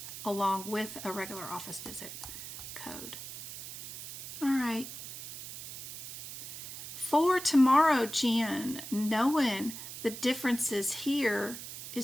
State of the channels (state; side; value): noise; right; hiss, 10 dB below the sound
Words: along with a regular office visit code. All right. For tomorrow, Jen, knowing the differences here is